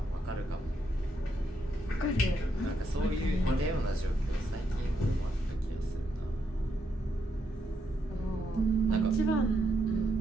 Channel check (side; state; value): both; normal; correlation 0.78